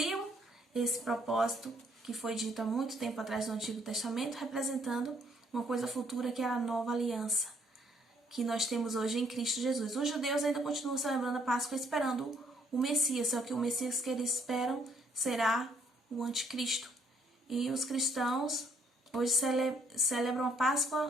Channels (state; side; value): normal; both; correlation 0.67